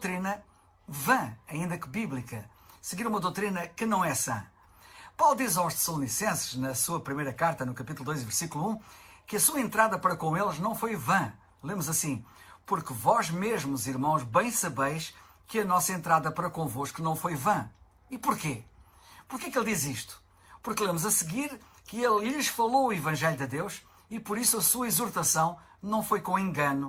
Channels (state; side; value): identical; both; correlation 1.00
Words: vã, ainda que bíblica. Seguir uma doutrina que não é sã. Paulo diz aos Tessalonicenses, na sua primeira carta, no capítulo 2, versículo 1, que a sua entrada para com eles não foi vã. Lemos assim: porque vós mesmos, irmãos, bem sabeis que a nossa entrada para convosco não foi vã. E porquê? Porquê que ele diz isto? Porque lemos a seguir que ele lhes falou o Evangelho de Deus e por isso a sua exortação não foi com